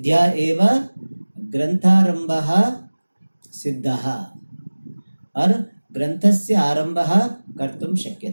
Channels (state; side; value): inverted; both; correlation -1.00